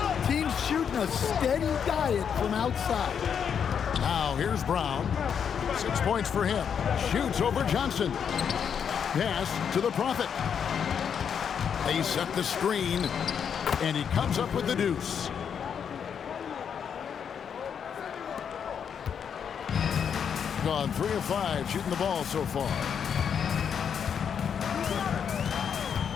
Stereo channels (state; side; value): quieter; right; 7.5 dB